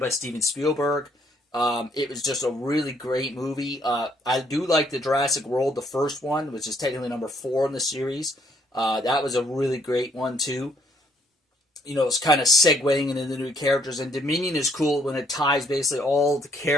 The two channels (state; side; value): normal; both; correlation 0.67